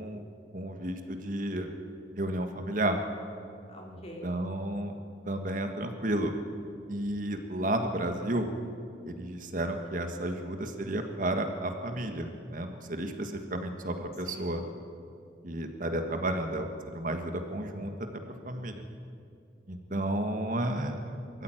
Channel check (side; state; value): both; normal; correlation 0.44